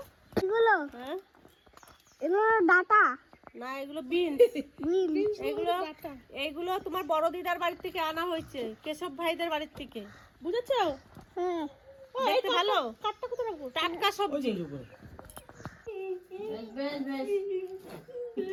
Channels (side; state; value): both; identical; correlation 1.00